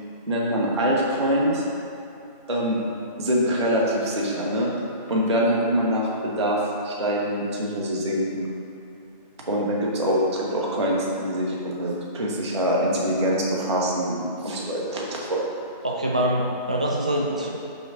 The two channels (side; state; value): both; inverted; correlation -0.34